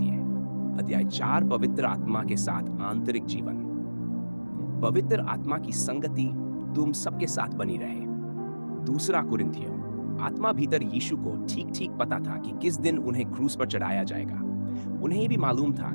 अध्याय 4, पवित्र आत्मा के साथ आंतरिक जीवन। पवित्र आत्मा की संगति तुम सबके साथ बनी रहे। 2 कुरिन्थियों। आत्मा भीतर यीशु को ठीक ठीक पता था कि किस दिन उन्हें क्रूस पर चढ़ाया जाएगा। उन्हें भी मालूम था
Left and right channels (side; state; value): both; inverted; correlation -1.00